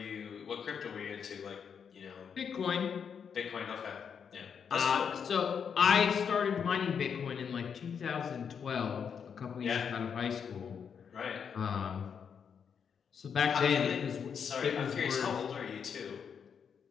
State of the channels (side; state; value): right; quieter; 7.0 dB